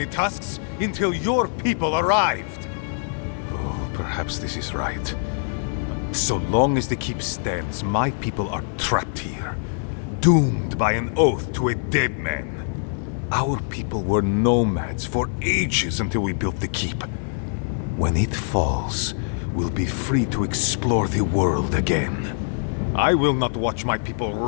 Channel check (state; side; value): silent; right; digital silence